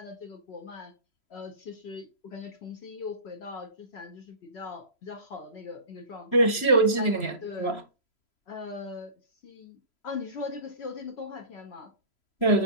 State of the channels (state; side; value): late; right; 3.0 ms